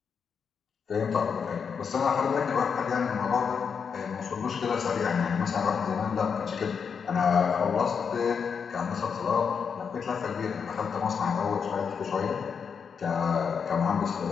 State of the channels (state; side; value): quieter; right; 6.4 dB